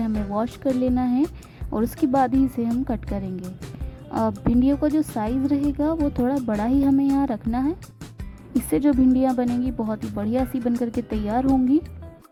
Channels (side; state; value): both; identical; correlation 1.00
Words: वॉश कर लेना है और उसके बाद ही इसे हम कट करेंगे। भिंडियों का जो साइज़ रहेगा वो थोड़ा बड़ा ही हमें यहाँ रखना है। इससे जो भिंडियाँ बनेंगी बहुत ही बढ़िया सी बन करके तैयार होंगी।